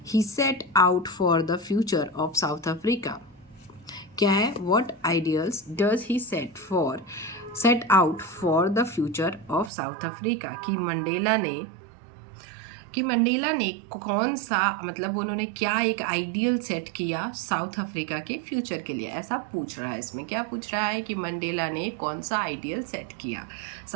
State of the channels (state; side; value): drops out; left; at 9.7 s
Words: he set out for the future of South Africa. क्या है? What ideals does he set out for the future of South Africa, कि मंडेला ने कौन सा, मतलब उन्होंने क्या एक आइडियल सेट किया साउथ अफ्रीका के फ्यूचर के लिए, ऐसा पूछ रहा है। इसमें क्या पूछ रहा है कि मंडेला ने कौन सा आइडियल सेट किया